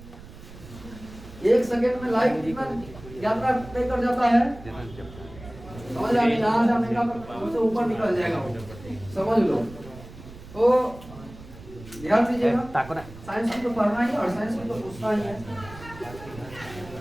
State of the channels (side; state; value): right; noise; rumble, 17 dB below the sound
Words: 1 सेकंड में लाइट कितना यात्रा तय कर जाता है? समझ आ गई? यहाँ से अमेरिका पर उससे ऊपर निकल जाएगा वो, समझ लो। तो ध्यान दीजिएगा, साइंस की तो पढ़ना ही और साइंस की तो पूछना ही है।